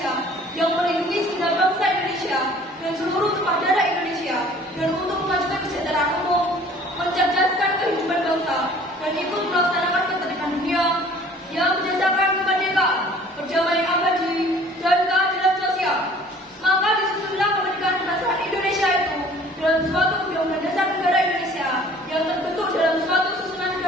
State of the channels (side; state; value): both; normal; correlation 0.51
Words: yang melindungi segenap bangsa Indonesia dan seluruh tumpah darah Indonesia, dan untuk memajukan kesejahteraan umum, mencerdaskan kehidupan bangsa, dan ikut melaksanakan ketertiban dunia yang berdasarkan kemerdekaan, perdamaian abadi, dan keadilan sosial. Maka disusunlah kemerdekaan kebangsaan Indonesia itu dalam suatu undang-undang dasar negara Indonesia yang terbentuk dalam suatu susunan